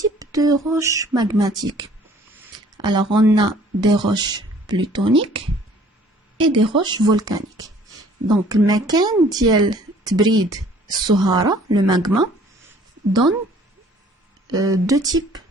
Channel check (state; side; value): normal; both; correlation 0.55